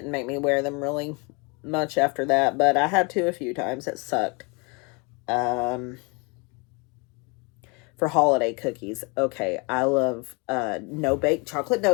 me wear them really much after that, but I had to a few times. It sucked. For holiday cookies, okay, I love no bake chocolate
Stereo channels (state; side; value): quieter; right; 30.3 dB